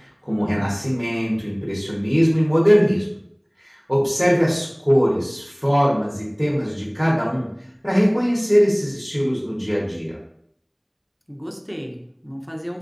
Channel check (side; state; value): both; identical; correlation 1.00